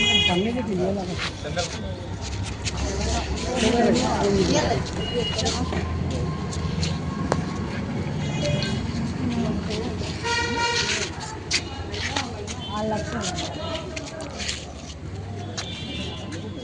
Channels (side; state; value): both; identical; correlation 1.00